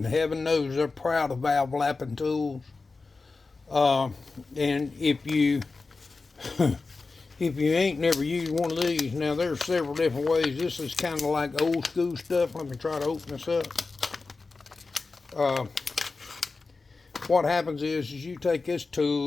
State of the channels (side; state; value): right; quieter; 4.0 dB